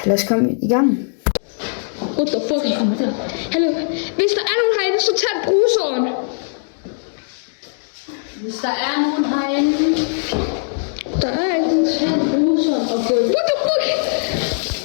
lad os komme i gang. What the fuck? Hallo, hvis der er nogen herinde, så tag bruseren. Hvis der er nogen herinde, Der er ikke. tag bruseren og gå. What the fuck?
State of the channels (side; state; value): right; silent; digital silence